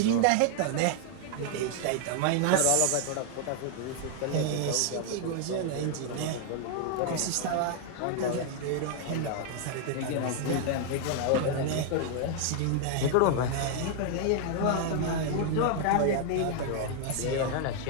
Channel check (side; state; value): both; different; correlation 0.00